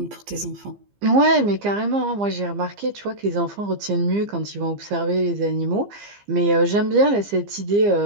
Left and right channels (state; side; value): late; left; 15 ms